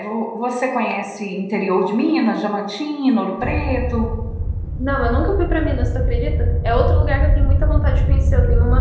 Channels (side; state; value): both; identical; correlation 1.00